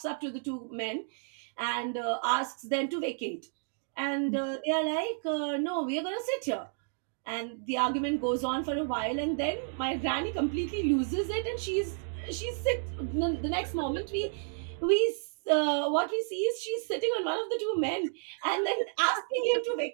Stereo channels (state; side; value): silent; left; digital silence